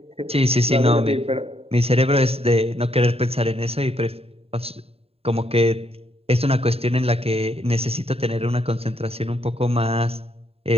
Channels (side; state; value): left; late; 0.29 ms